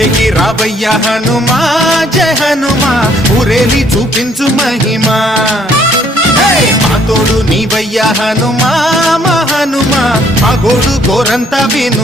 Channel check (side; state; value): both; normal; correlation 0.64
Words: రావయ్య హనుమా జయ హనుమా ఊరేలి చూపించు మహిమా మా తోడు నీవయ్య హనుమా మా హనుమా మా గోడు గోరంత